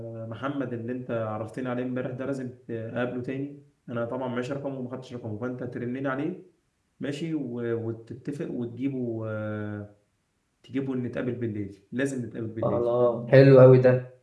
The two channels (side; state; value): both; identical; correlation 1.00